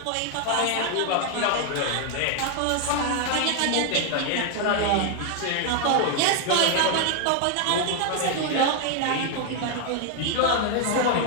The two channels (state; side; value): different; both; correlation 0.00